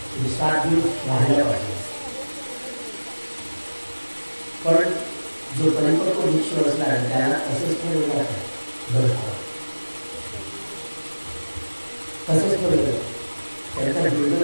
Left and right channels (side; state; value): both; inverted; correlation -1.00